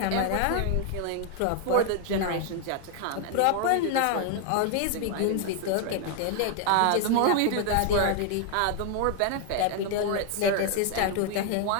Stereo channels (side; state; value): both; different; correlation 0.00